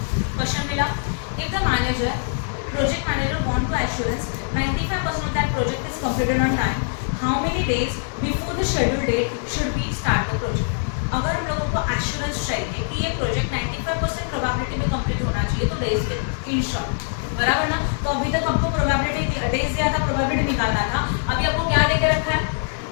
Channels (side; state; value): right; silent; 60 dB below the other